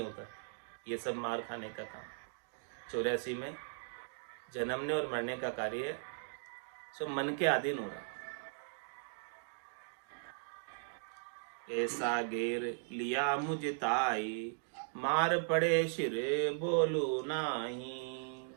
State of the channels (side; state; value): left; silent; digital silence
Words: ये सब मार खाने का काम 84 में जन्मने और मरने का कार्य सब मन के अधीन हो रहा। ऐसा घेर लिया मुझे ताई, मार पड़े सिर बोलू नाही।